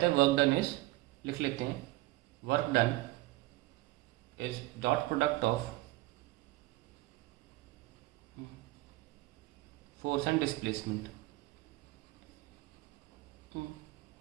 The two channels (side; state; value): left; quieter; 19.1 dB